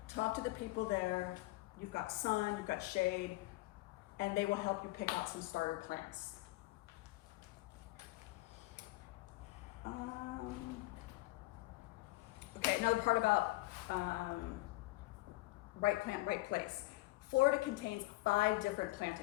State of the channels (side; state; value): right; quieter; 20.4 dB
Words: Talk to the people there. You've got sun, you've got shade, and they will help you pick out some starter plants. Okay, another part about right plant, right place. Florida contains 5 different